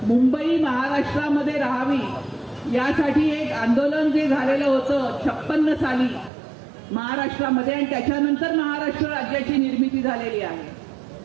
मुंबई महाराष्ट्रामध्ये राहावी यासाठी एक आंदोलन जे झालेलं होतं 56 साली महाराष्ट्रामध्ये आणि त्याच्यानंतर महाराष्ट्र राज्याची निर्मिती झालेली आहे.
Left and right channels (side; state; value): left; drops out; at 6.3 s